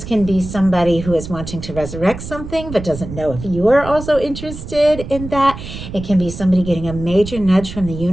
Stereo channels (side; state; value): right; noise; rumble, 10 dB below the sound